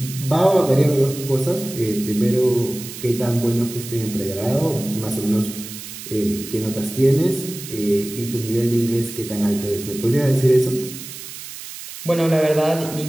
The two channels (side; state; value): right; noise; hiss, 12 dB below the sound